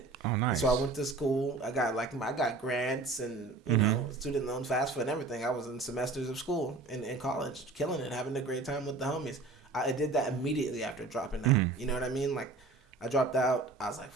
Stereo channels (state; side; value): quieter; left; 3.5 dB